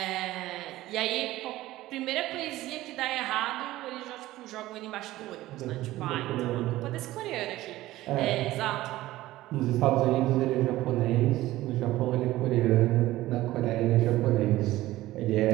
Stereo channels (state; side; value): quieter; left; 16.4 dB